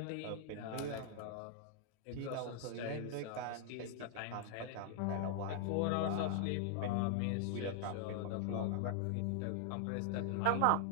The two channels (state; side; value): different; both; correlation 0.00